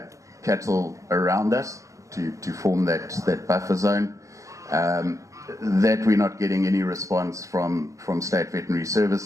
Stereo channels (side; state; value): left; late; 0.15 ms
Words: cattle around us to form that buffer zone. That we're not getting any response from state veterinary